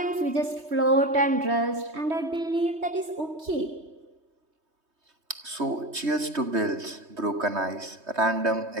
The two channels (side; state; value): left; late; 3.2 ms